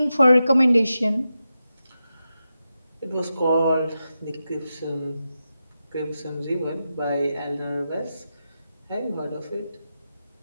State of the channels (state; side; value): inverted; both; correlation -0.90